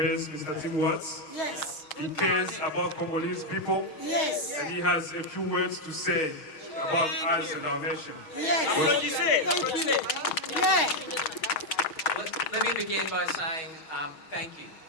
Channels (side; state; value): right; late; 6.4 ms